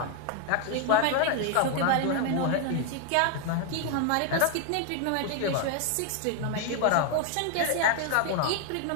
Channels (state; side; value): different; both; correlation 0.01